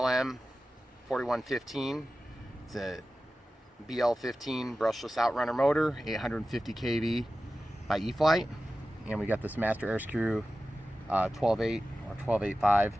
4115. It's a BL15 brushless outrunner motor, 850 kV by e-flite, and we got this master-airscrew 12.8 or 12.85.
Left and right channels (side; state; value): both; normal; correlation 0.94